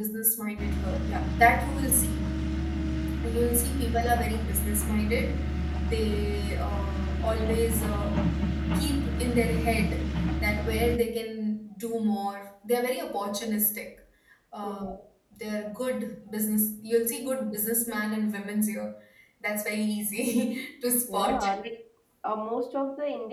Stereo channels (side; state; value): both; identical; correlation 1.00